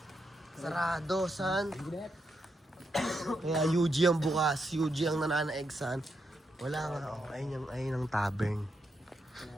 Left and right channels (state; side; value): normal; both; correlation 0.82